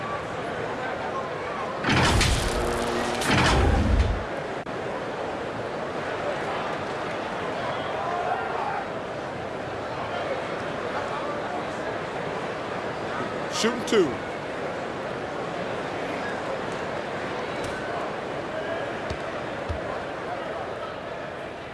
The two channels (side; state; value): both; identical; correlation 1.00